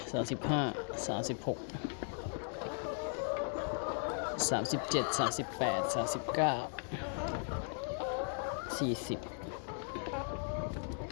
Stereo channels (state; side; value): silent; right; 53 dB below the other